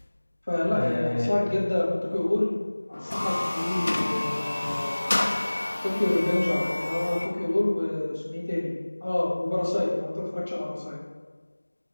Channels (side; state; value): both; inverted; correlation -1.00